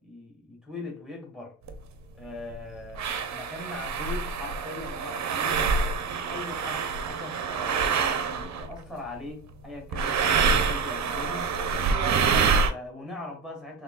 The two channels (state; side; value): quieter; left; 4.7 dB